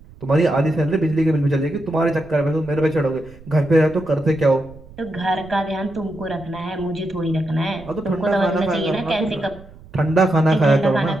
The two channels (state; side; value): noise; right; rumble, 21 dB below the sound